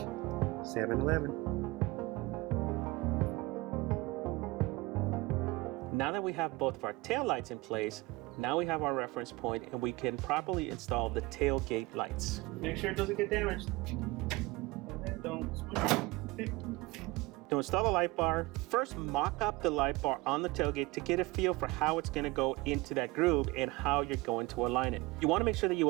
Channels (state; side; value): quieter; left; 22.1 dB